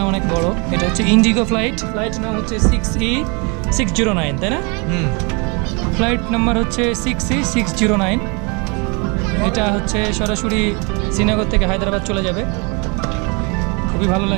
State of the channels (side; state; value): left; quieter; 31.8 dB